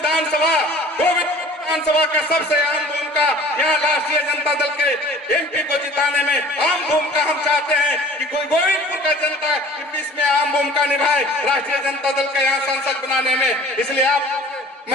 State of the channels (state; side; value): normal; both; correlation 0.47